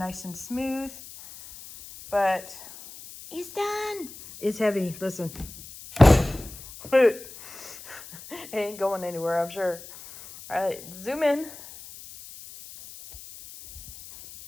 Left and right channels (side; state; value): left; noise; hiss, 16 dB below the sound